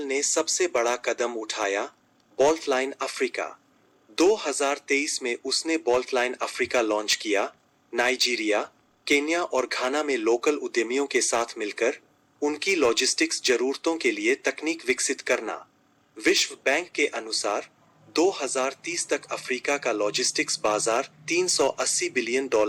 सबसे बड़ा कदम उठाया, बोल्ट लाइन अफ्रीका। 2023 में उसने बोल्ट लाइन अफ्रीका लॉन्च किया। नाइजीरिया, केन्या और घाना में लोकल उद्यमियों के साथ मिलकर उनकी लॉजिस्टिक्स जरूरतों के लिए तकनीक विकसित करना। विश्व बैंक के अनुसार 2030 तक अफ्रीका का लॉजिस्टिक्स बाजार $380 बिलियन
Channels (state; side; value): identical; both; correlation 1.00